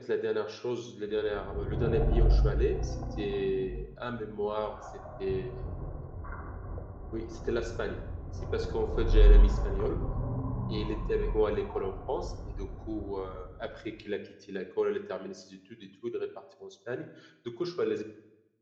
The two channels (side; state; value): both; identical; correlation 1.00